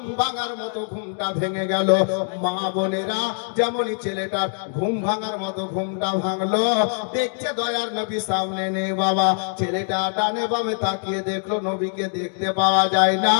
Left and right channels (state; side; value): silent; right; digital silence